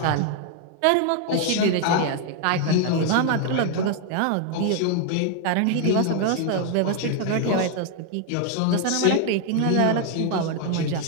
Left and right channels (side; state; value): both; different; correlation 0.00